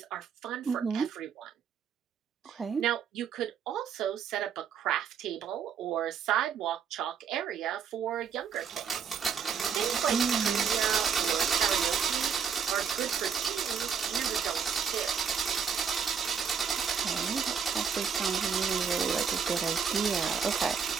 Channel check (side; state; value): left; quieter; 7.0 dB